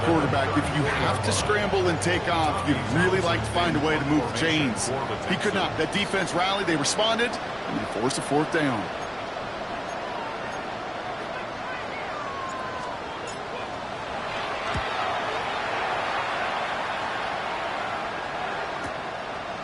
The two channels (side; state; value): both; identical; correlation 1.00